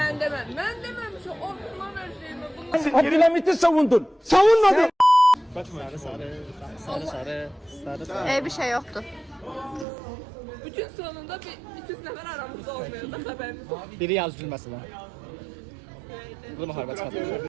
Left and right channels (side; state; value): left; drops out; at 9.9 s